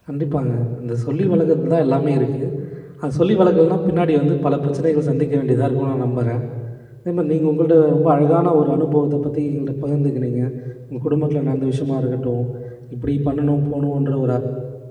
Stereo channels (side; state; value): both; identical; correlation 1.00